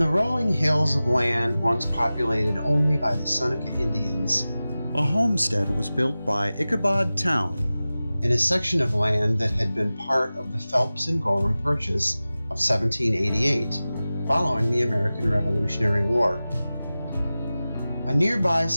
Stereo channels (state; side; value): inverted; both; correlation -0.96